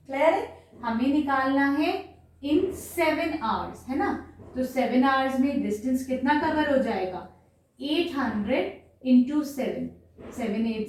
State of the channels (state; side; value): identical; both; correlation 1.00